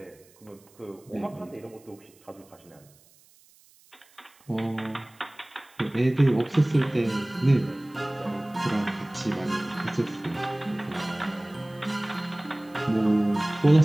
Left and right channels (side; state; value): right; noise; hiss, 29 dB below the sound